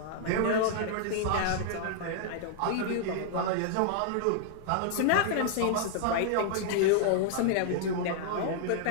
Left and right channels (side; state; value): both; different; correlation -0.01